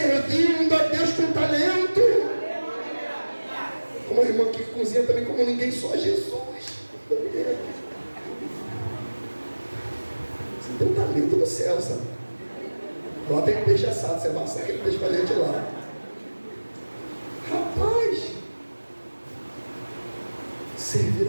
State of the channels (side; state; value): both; inverted; correlation -1.00